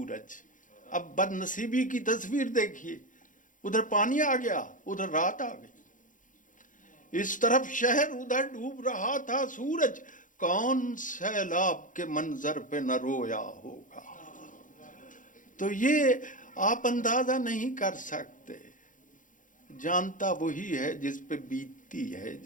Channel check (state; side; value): late; right; 0.38 ms